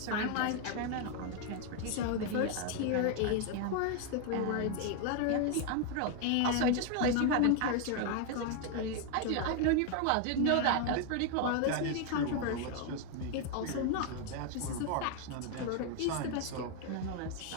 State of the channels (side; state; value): both; different; correlation 0.01